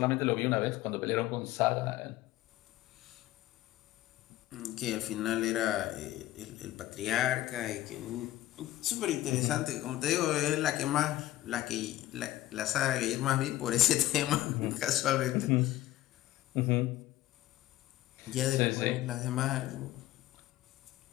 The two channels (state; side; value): quieter; right; 15.2 dB